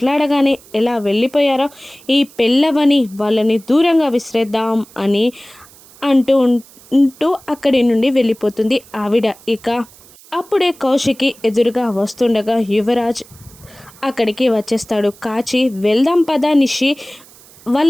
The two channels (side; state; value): right; noise; hiss, 24 dB below the sound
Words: ఎలా వెళ్ళిపోయారో, ఈ పెళ్ళవని వాళ్ళని దూరంగా విసిరేద్దాం అని అంటూ అక్కడి నుండి వెళ్ళిపోతుంది ఆవిడ. ఇక అప్పుడే కౌశికి ఎదురుగా వస్తుండగా యువరాజ్ అక్కడికి వచ్చేస్తాడు. కాచి, వెళ్దాం పదా నిషి,